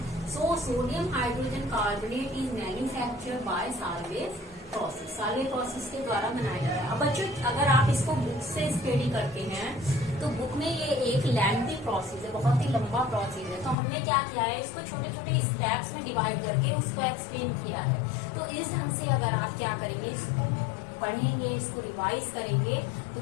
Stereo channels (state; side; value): drops out; right; at 13.8 s